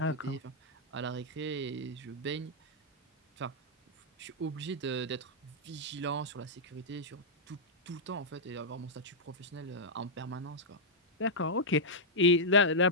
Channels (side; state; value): both; normal; correlation -0.07